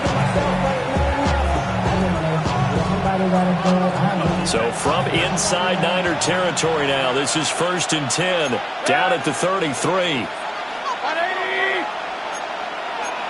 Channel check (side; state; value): both; identical; correlation 1.00